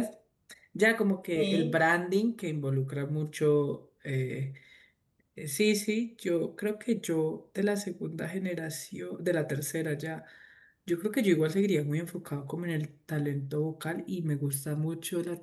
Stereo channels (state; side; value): identical; both; correlation 1.00